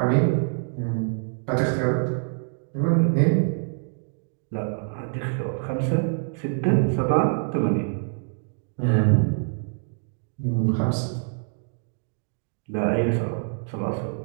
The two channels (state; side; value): silent; left; 61 dB below the other